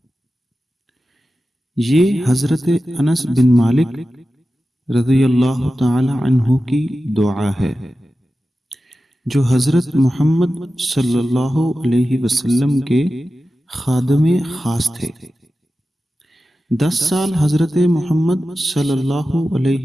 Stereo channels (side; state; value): both; normal; correlation 0.93